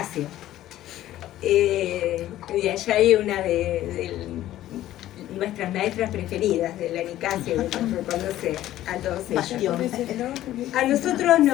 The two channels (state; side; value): quieter; right; 13.8 dB